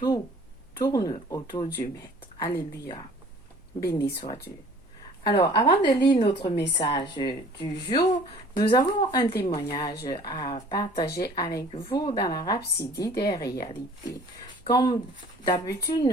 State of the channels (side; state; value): left; noise; hum, 28 dB below the sound